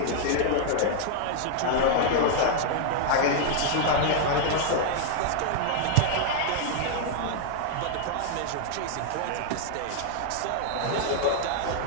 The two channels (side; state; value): both; different; correlation 0.00